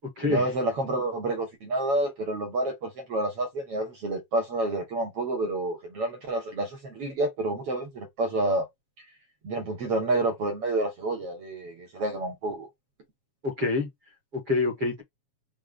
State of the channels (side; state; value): left; late; 7.3 ms